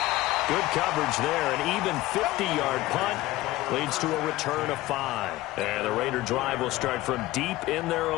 Good coverage there. An even 50-yard punt leads to a return of 5. And the Raider drive will start from deep in their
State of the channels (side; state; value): right; quieter; 17.6 dB